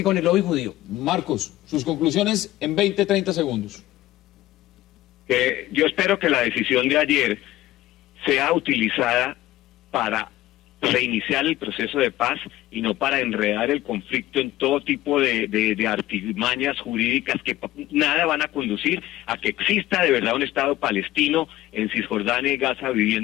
con el lobby judío. Marcos, sus conclusiones en 20, 30 segundos. Yo espero que la decisión de ayer sea utilizada para reiniciar el proceso de paz y no para enredar el conflicto en todo tipo de artimañas jurídicas que nada van a conducir a que exista de verdad un Estado palestino en Cisjordania y Gaza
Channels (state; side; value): quieter; right; 15.6 dB